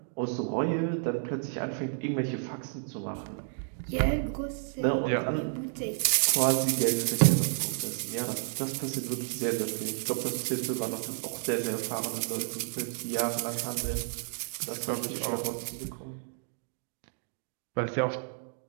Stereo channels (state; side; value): silent; left; digital silence